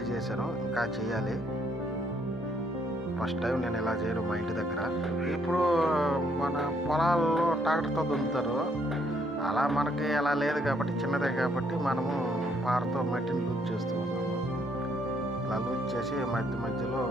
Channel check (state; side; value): normal; both; correlation 0.70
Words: చేశాను. ఇంకా చేయాలి. ఫస్ట్ టైం నేను ఇలా చేయను మా ఇంటి దగ్గర. ఇప్పుడు మన పొలాల్లో ట్రాక్టర్తో దున్నుతారు. అలా మనకి అలా లేదు కాబట్టి, చిన్నదే కాబట్టి మనము పారతో మట్టిని లూజ్ చేస్తూ ఉన్నాము. ఇలా లూజ్ చేసి మధ్య మధ్యలో